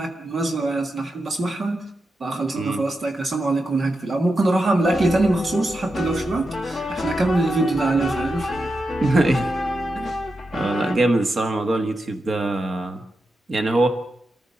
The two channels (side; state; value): both; normal; correlation 0.88